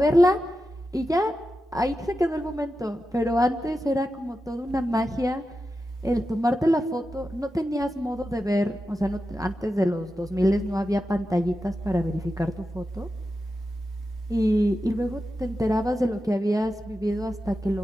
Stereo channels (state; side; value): normal; both; correlation 0.91